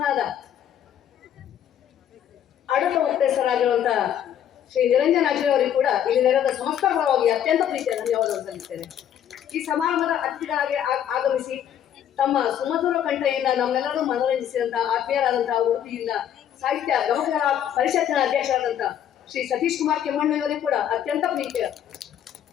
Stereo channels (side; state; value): right; quieter; 9.9 dB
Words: ಆಡಳಿತ ಮುಕ್ತೇಸರಾಗಿರುವಂತಹ ಶ್ರೀ ನಿರಂಜನ್ ಹಾಜ್ರಿ ಅವರಿಗೆ ಕೂಡ ಇಲ್ಲಿ ನೆರೆದ ಸಮಸ್ತ ಪರವಾಗಿ ಅತ್ಯಂತ ಪ್ರೀತಿಯ ಧನ್ಯವಾದವನ್ನು ಸಲ್ಲಿಸ್ತೇನೆ. ಈ ಸಮಾರಂಭದ ಅತಿಥಿಗಳಾಗಿ ಆಗಮಿಸಿ ತಮ್ಮ ಸುಮಧುರ ಕಂಠೆಯಿಂದ ನಮ್ಮೆಲ್ಲರೂ ಮನೋರಂಜಿಸಿದಂತಹ ಆತ್ಮೀಯರಾದಂತಹ ಉಡುಪಿಯಿಂದ ಸಾಹಿತ್ಯ ಗಮಕಗಳ ಪರಿಷತ್ತಿನ ಅಧ್ಯಕ್ಷರಾದಂತಹ ಶ್ರೀ ಸತೀಶ್ ಕುಮಾರ್ ಕೆಮ್ಮಣ್ಣು ಇವರಿಗೆ ಕೂಡ ಅತ್ಯಂತ ಪ್ರೀತಿಯ